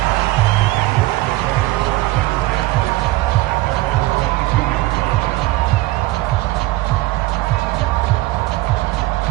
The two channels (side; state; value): left; quieter; 18.3 dB